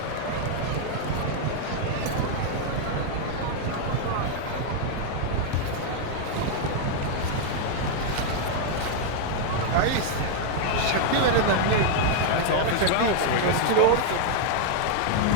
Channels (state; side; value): different; both; correlation 0.00